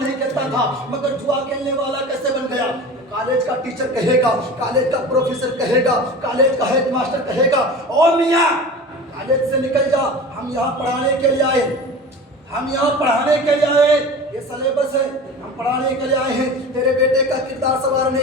کھیلتا تھا مگر جوا کھیلنے والا کیسے بن گیا؟ کالج کا ٹیچر کہے گا، کالج کا پروفیسر کہے گا، کالج کا ہیڈ ماسٹر کہے گا او میاں کالج سے نکل جا، ہم یہاں پڑھانے کے لیے آئے، ہم یہاں پڑھانے کے لیے آئے، یہ سلیبس ہے، ہم پڑھانے کے لیے آئے ہیں، تیرے بیٹے کا کردار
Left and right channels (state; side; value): normal; both; correlation 0.35